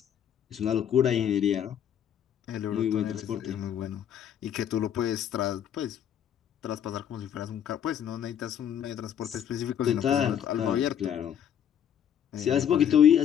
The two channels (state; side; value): quieter; right; 9.4 dB